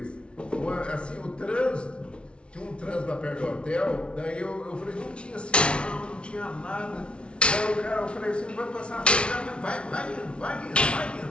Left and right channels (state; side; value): late; right; 0.058 ms